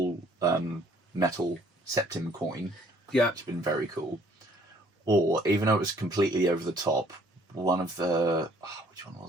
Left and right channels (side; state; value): both; normal; correlation 0.60